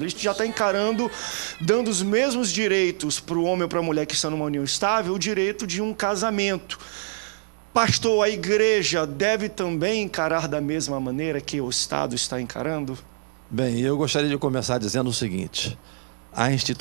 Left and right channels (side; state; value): left; silent; digital silence